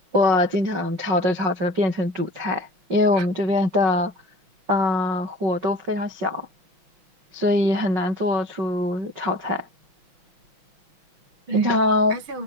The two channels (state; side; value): late; left; 5.4 ms